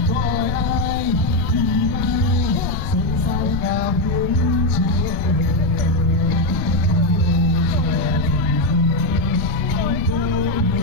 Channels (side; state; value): left; noise; rumble, 6 dB below the sound